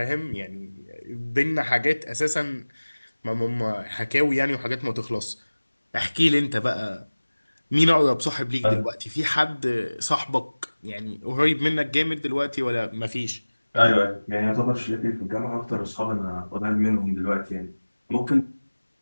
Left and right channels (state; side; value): inverted; both; correlation -1.00